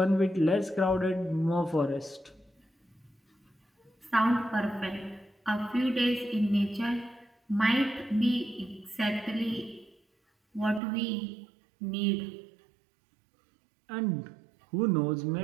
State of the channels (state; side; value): drops out; left; at 10.8 s